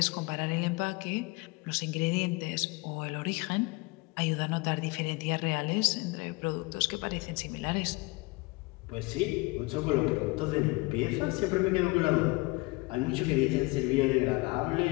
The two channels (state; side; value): quieter; right; 24.6 dB